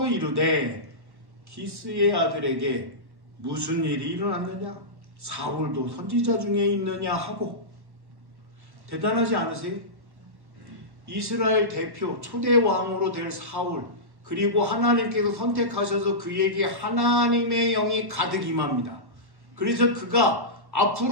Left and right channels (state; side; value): late; left; 1.1 ms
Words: 이르되 기스의 아들에게 무슨 일이 일어났느냐? 사울도 선지자 중에 있느냐 하고. 대단하지 않으세요? 이스라엘 대표 초대 왕으로 될 사울, 그리고 하나님께서 선택하셔서 그에게 하나님의 영이 가득 임합니다. 그래서 그가